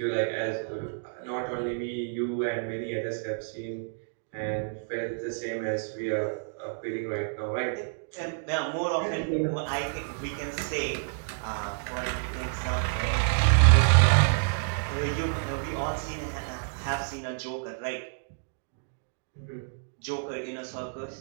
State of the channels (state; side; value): silent; left; digital silence